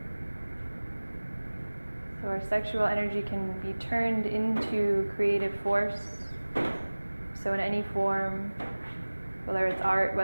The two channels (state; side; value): inverted; both; correlation -1.00